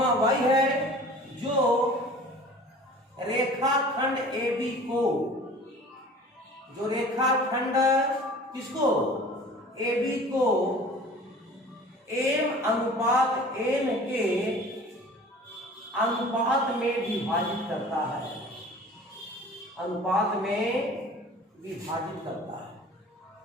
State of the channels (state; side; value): normal; both; correlation 0.44